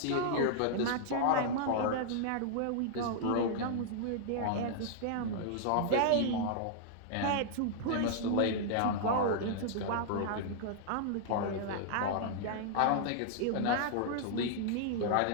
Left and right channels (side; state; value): both; different; correlation -0.01